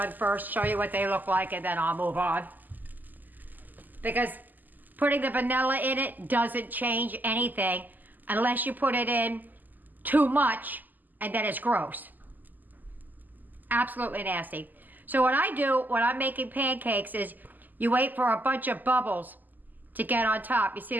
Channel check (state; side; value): late; left; 0.085 ms